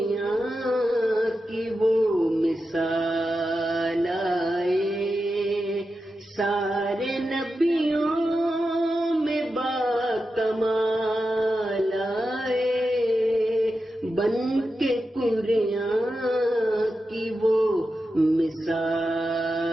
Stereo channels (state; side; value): normal; both; correlation 0.90